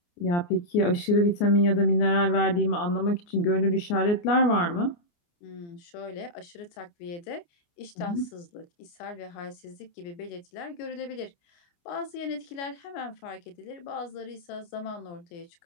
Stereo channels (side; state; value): right; late; 29 ms